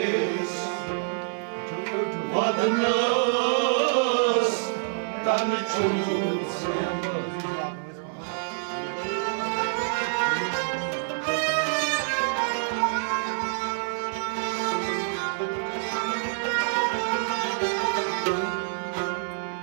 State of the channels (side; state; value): left; silent; 60 dB below the other